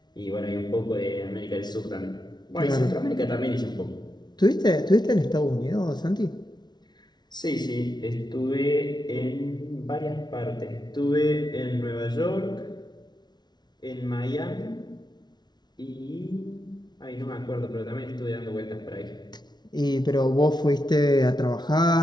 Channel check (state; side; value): late; right; 0.20 ms